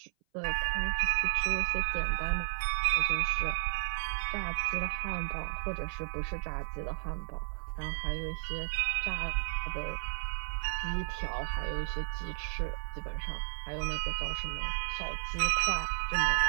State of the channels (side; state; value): left; silent; 56 dB below the other